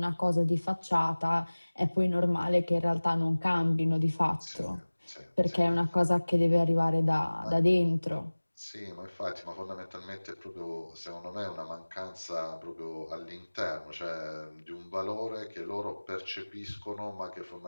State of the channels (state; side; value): inverted; both; correlation -1.00